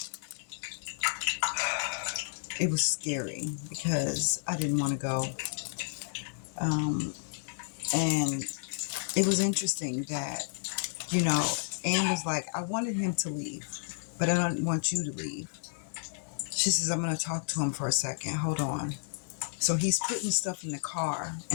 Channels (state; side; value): silent; right; digital silence